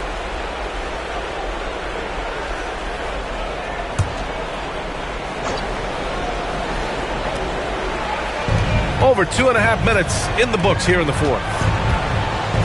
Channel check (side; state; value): both; identical; correlation 1.00